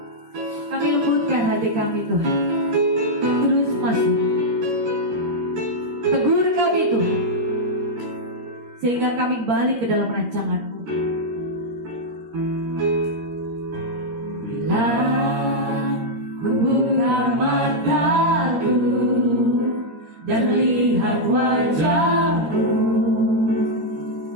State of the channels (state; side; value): late; left; 13 ms